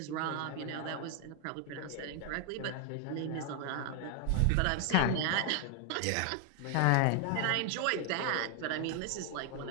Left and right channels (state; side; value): different; both; correlation 0.00